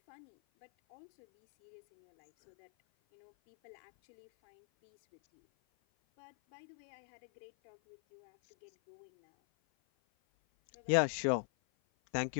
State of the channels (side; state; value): right; silent; 50 dB below the other